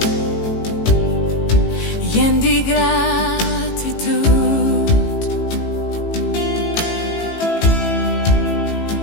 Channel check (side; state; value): right; late; 18 ms